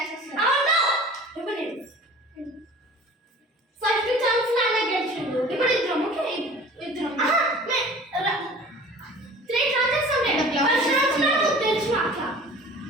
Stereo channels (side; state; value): both; normal; correlation 0.44